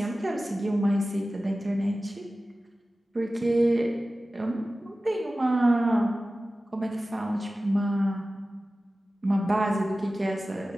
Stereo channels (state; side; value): normal; both; correlation 0.96